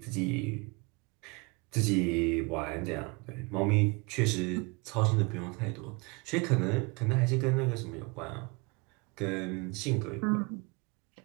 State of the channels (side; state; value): left; quieter; 28.7 dB